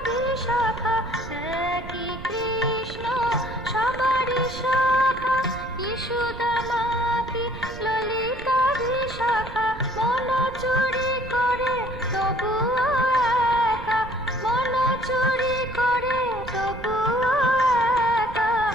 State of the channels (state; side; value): noise; right; rumble, 13 dB below the sound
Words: বিশাখা। একই কৃষ্ণ সবারই শাখা, কি সুদামা কি ললিতা বিশাখা। মন চুরি করে তবুও একা, মন চুরি করে তবুও একা,